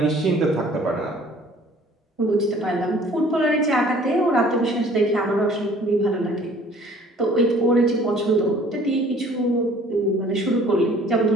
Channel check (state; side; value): normal; both; correlation 0.53